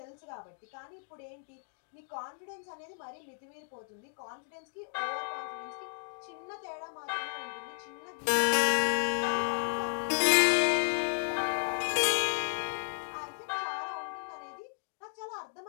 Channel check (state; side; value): silent; right; digital silence